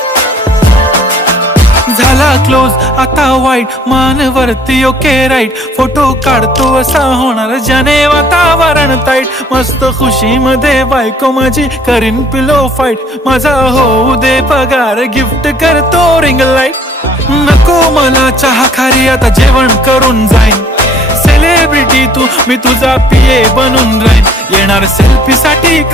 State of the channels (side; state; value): both; normal; correlation 0.58